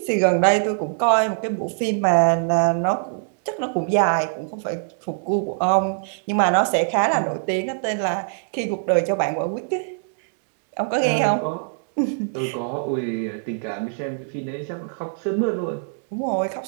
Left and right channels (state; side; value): silent; left; digital silence